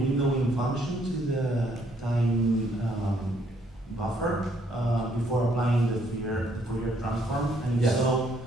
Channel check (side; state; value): both; normal; correlation 0.68